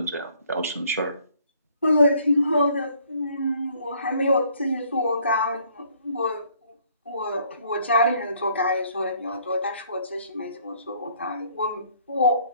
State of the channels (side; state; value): both; inverted; correlation -0.62